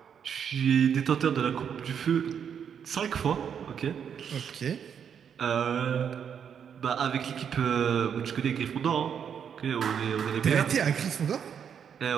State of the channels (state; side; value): quieter; left; 7.8 dB